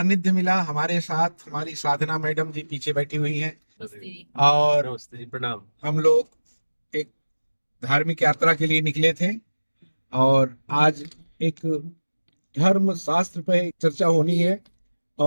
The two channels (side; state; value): both; inverted; correlation -1.00